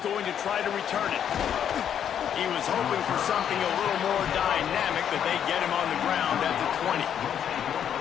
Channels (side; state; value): right; quieter; 9.1 dB